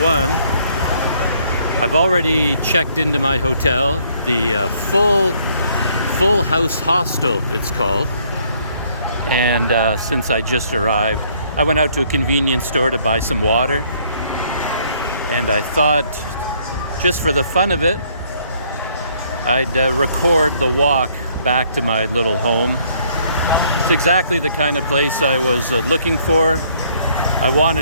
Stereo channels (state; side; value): inverted; both; correlation -0.65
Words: I've already checked into my hotel, the full House Hostel it's called. And since I just arrived, I went out to a convenience store to buy some water. And I thought, just for the fun of it, I'd record the walk back to my little home. It's exactly the kind of place I was looking for. I